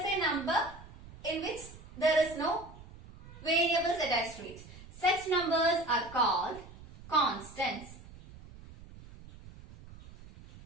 a number in which there is no variables attached to it. Such numbers are called constants.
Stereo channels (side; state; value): right; noise; rumble, 18 dB below the sound